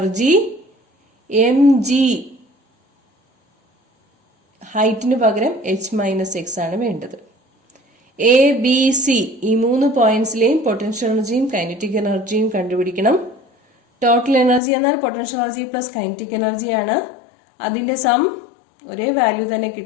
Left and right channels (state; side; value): drops out; right; at 14.6 s